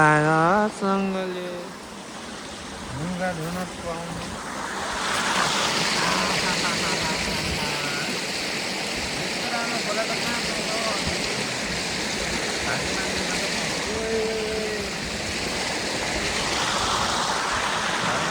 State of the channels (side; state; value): both; identical; correlation 1.00